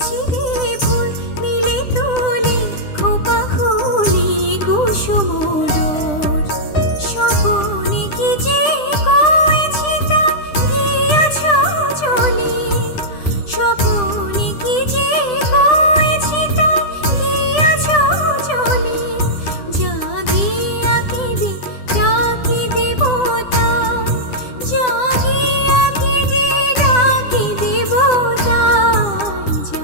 দে ফুল নীলে তুলি খোপা খুলি কুসুম ডোর স্বপনে কি যে কয়েছি তার গিয়া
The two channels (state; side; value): late; right; 9.9 ms